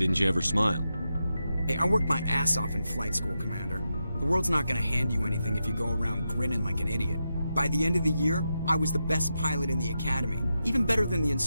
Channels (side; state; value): both; inverted; correlation -0.87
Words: you ever smile? Hey, I worked my ass off in flight school, Commander. The world's not gonna hand you anything if you go around grinning like an idiot. By the end of the year, I was the best pilot in the academy. Even better than the